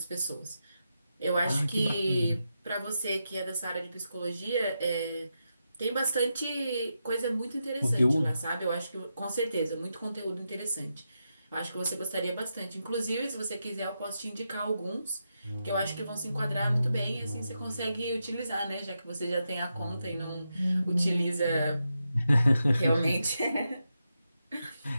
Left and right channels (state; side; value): inverted; both; correlation -0.86